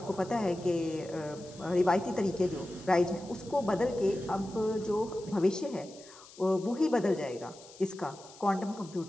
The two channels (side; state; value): left; noise; hiss, 21 dB below the sound